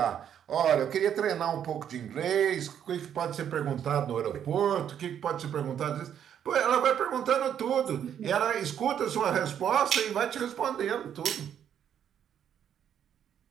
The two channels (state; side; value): quieter; left; 9.2 dB